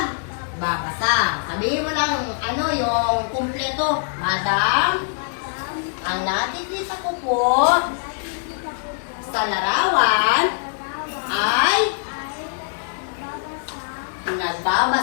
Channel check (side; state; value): right; silent; digital silence